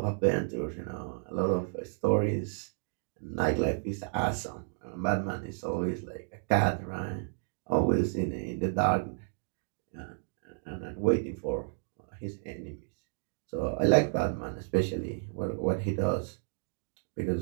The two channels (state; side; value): silent; left; digital silence